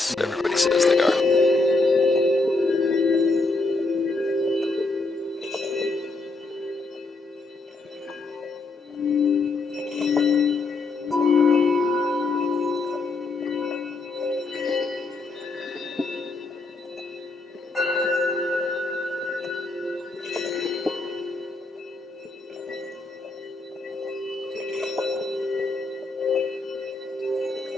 everybody says they are.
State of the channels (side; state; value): right; quieter; 3.4 dB